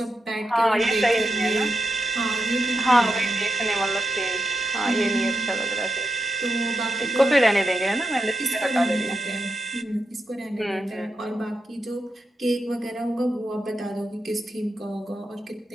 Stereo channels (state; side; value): normal; both; correlation 0.86